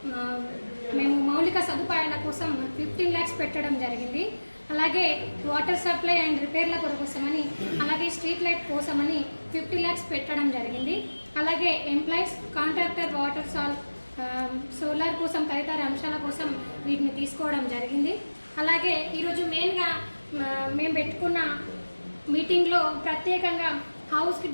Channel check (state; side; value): inverted; both; correlation -1.00